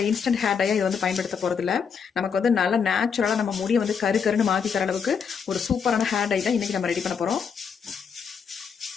இன்ஸ்டன்ட் ஹேர் டையை இது பயன்படுத்த போகிறதில்ல. நமக்கு நல்லா நேச்சுரலாக நம்ம முடியை கருன்னு மாற்றி தர அளவுக்கு ஒரு சூப்பரான ஹேர் டை தான் இன்னைக்கு நம்ம ரெடி பண்ண போகிறோம்.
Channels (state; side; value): quieter; right; 6.5 dB